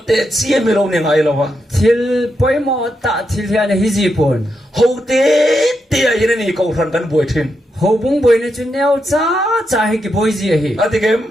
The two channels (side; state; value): both; normal; correlation 0.83